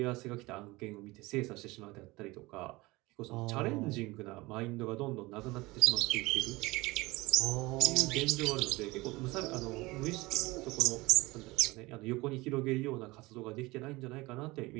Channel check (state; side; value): quieter; left; 21.8 dB